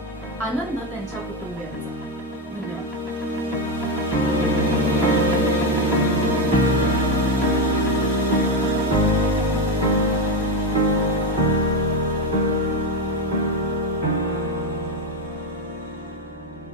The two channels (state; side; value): normal; both; correlation 0.11